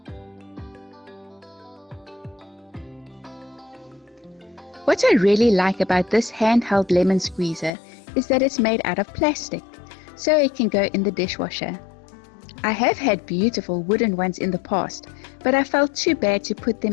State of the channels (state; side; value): drops out; right; at 7.7 s